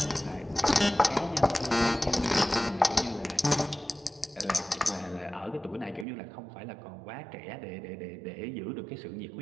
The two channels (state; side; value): drops out; left; at 6.1 s